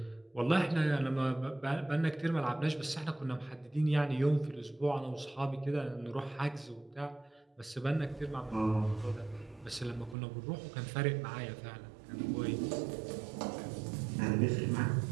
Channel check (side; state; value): left; drops out; at 10.2 s